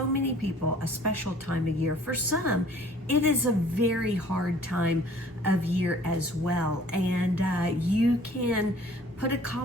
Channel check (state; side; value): normal; both; correlation 0.53